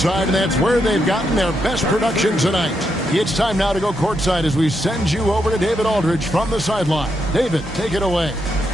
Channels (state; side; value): normal; both; correlation 0.81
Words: and that's where they've gotten their best production tonight. It's time now to go courtside as we send you over to David Aldridge from the sideline. David, take it away.